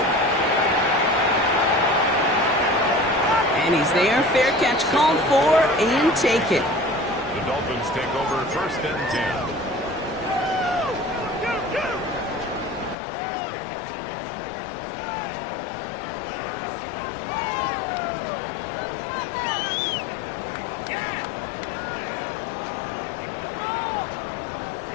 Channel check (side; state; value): right; drops out; at 13.0 s